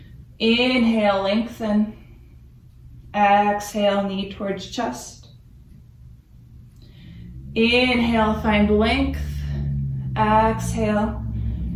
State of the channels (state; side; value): identical; both; correlation 1.00